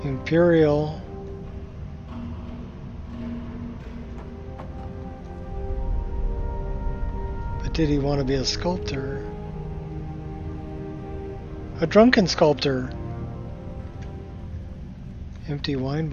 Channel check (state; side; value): identical; both; correlation 1.00